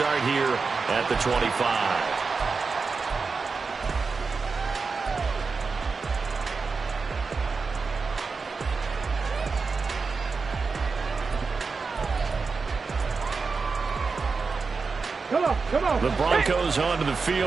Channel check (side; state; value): left; quieter; 4.7 dB